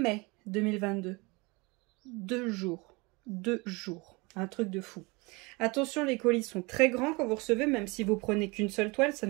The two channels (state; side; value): quieter; left; 26.5 dB